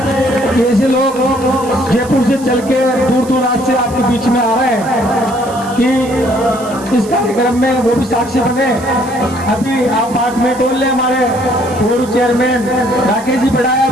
ऐसे लोग जयपुर से चल के दूर दूर रात से आपके बीच में आ रहे हैं कि इस कार्यक्रम में वो भी साक्षी बने। अभी आप 5 मिनट और ले, हमारे पूर्व चेयरमैन राकेश जी बढ़ाया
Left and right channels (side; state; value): right; noise; hiss, 18 dB below the sound